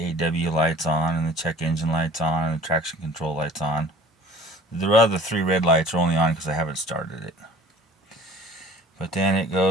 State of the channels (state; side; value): normal; both; correlation 0.47